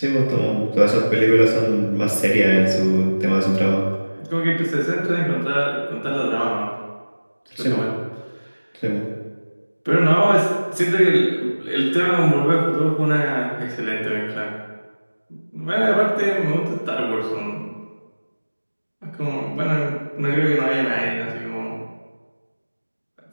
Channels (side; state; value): both; inverted; correlation -1.00